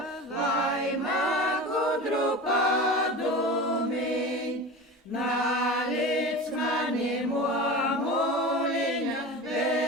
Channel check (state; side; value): normal; both; correlation 0.31